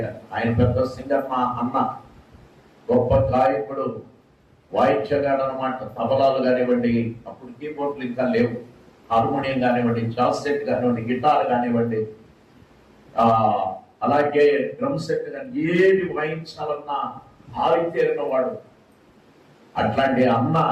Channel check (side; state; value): both; identical; correlation 1.00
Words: ఆయన పెద్ద సింగర్, మా అన్న గొప్ప గాయకుడు, వాయిద్యగాడు అనమాట. తబలాలు కానివ్వండి, అప్పుడు కీబోర్డులు ఇంకా లేవు, హార్మోనియం కానివ్వండి, జాజ్ సెట్ కానివ్వండి, గిటార్ కానివ్వండి, అలాగే డ్రమ్ సెట్ కానీ ఏది వాయించాలన్నా ఆరితేరిన వాడు. అట్లాంటి అన్న